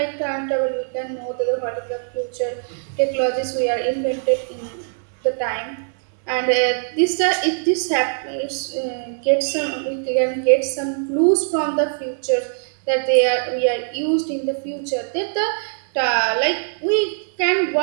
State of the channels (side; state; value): left; silent; 60 dB below the other